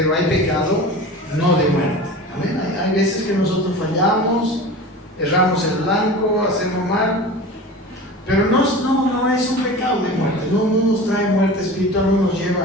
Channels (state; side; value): normal; both; correlation 0.35